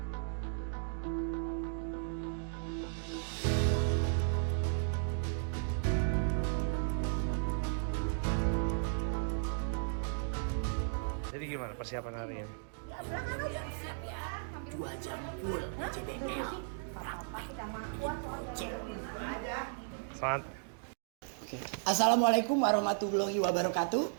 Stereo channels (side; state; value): left; silent; digital silence